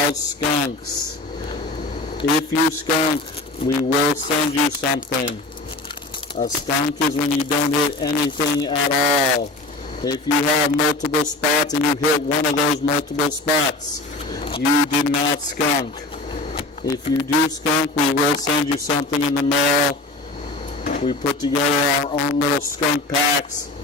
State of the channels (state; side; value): quieter; right; 3.1 dB